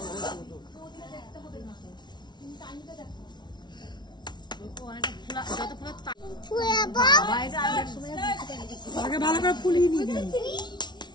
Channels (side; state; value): right; late; 0.21 ms